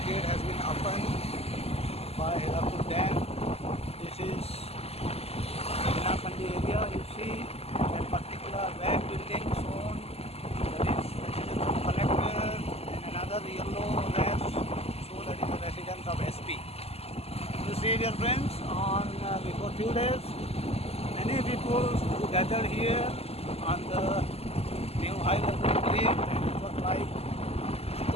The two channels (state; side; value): late; right; 0.29 ms